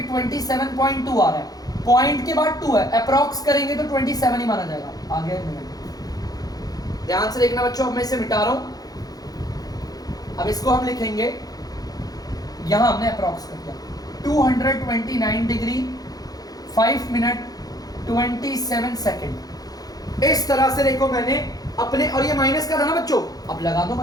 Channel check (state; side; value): late; right; 0.18 ms